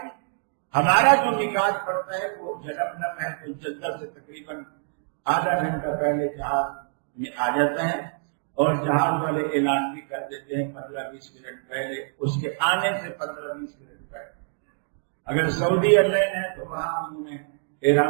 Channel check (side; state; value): left; silent; digital silence